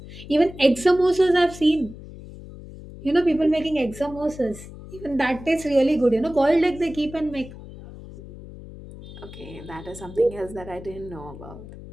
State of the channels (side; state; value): left; noise; hum, 15 dB below the sound